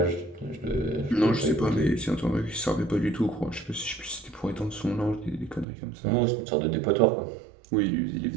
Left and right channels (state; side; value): drops out; left; at 5.7 s